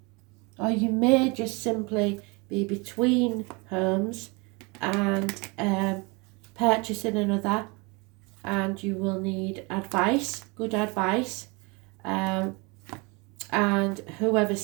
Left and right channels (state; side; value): quieter; left; 28.4 dB